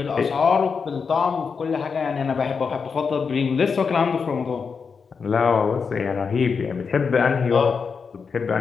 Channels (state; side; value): quieter; right; 5.6 dB